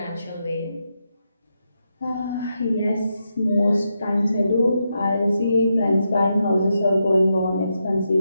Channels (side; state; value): both; inverted; correlation -0.84